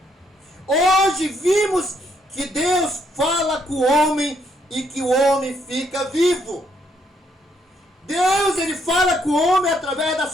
Hoje vimos que Deus fala com o homem e que o homem fica vivo. Deus, ele fala com o homem através da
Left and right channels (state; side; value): normal; both; correlation 0.72